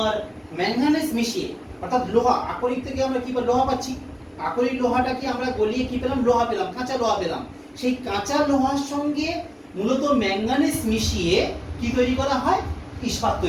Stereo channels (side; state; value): both; identical; correlation 1.00